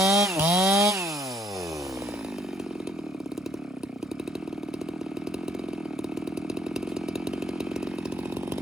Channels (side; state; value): both; normal; correlation 0.66